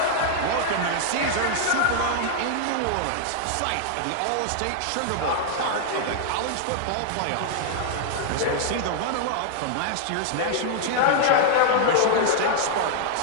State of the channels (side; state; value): both; different; correlation -0.01